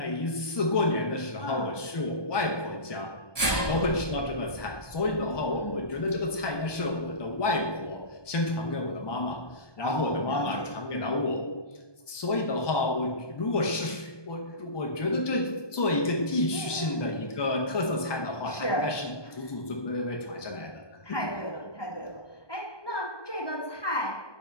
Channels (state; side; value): late; right; 1.2 ms